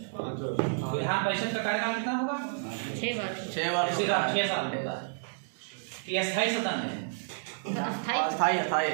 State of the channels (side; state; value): left; silent; digital silence